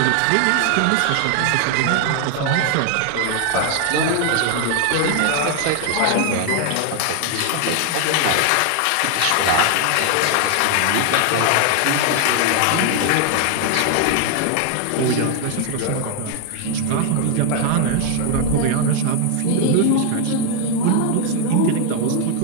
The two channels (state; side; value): different; both; correlation 0.00